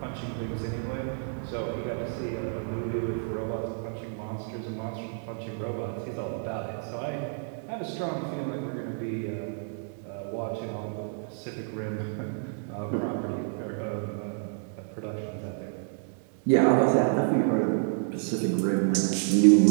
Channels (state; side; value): silent; left; 58 dB below the other